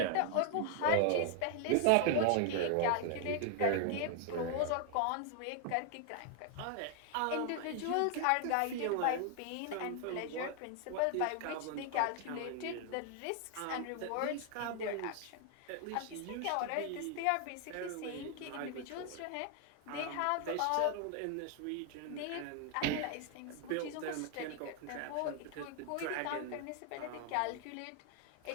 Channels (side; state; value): both; different; correlation 0.00